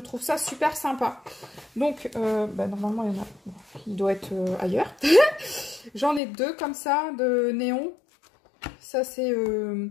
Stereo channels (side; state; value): right; drops out; at 6.2 s